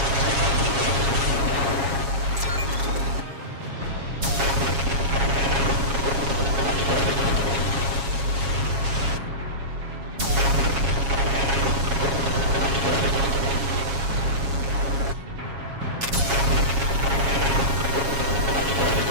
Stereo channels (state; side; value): late; left; 7.3 ms